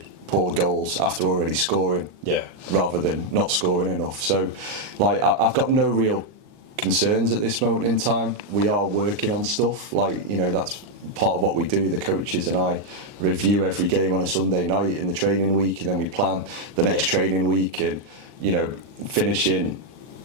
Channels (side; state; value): left; late; 39 ms